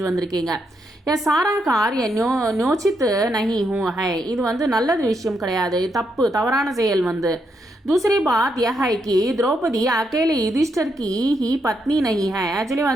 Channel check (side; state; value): both; normal; correlation 0.79